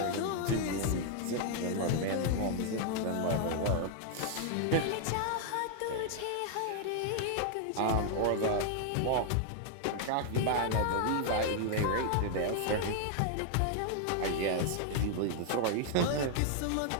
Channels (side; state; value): both; different; correlation 0.00